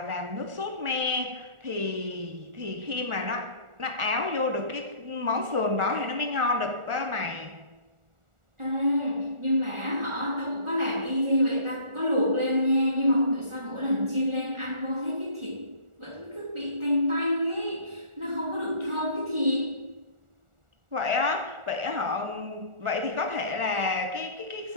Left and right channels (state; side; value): late; left; 1.4 ms